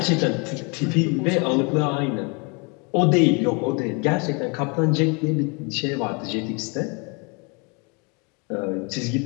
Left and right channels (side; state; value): right; quieter; 31.6 dB